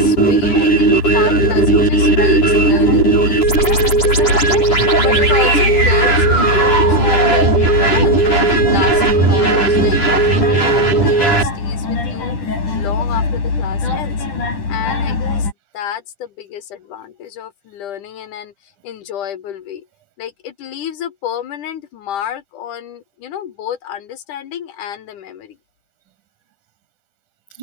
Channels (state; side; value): late; right; 10 ms